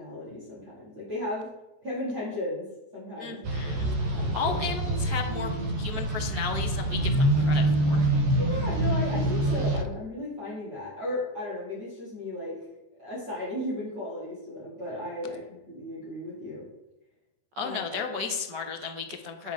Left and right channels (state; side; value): late; left; 14 ms